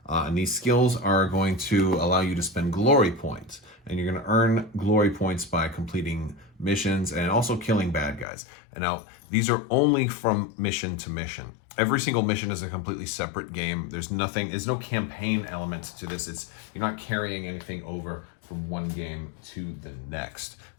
and these skills are going to allow you to spend glory points. And you're going to earn glory points by completing missions and also killing bad guys. And now, these are only from mission to mission. Every single mission is a completely separate game. There's no campaign element to this. You're not carrying anything over from one game to the next.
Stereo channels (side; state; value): right; drops out; at 8.2 s